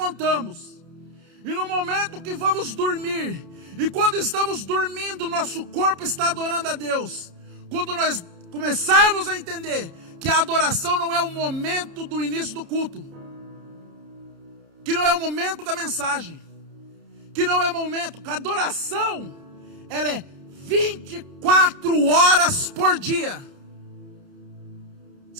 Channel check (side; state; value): left; late; 30 ms